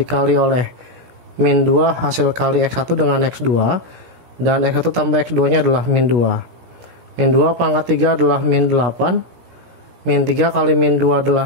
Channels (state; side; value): late; left; 17 ms